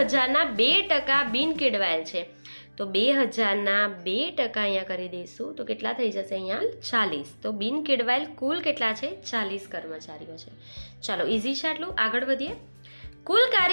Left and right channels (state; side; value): inverted; both; correlation -1.00